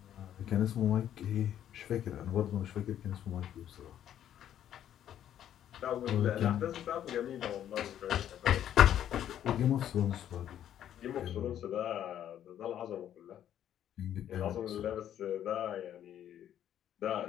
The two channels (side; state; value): right; quieter; 10.7 dB